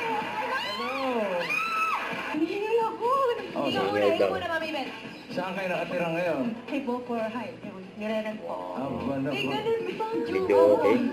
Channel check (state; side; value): identical; both; correlation 1.00